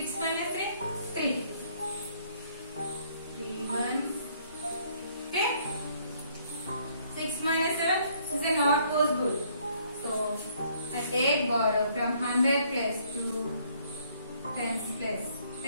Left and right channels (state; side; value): inverted; both; correlation -0.65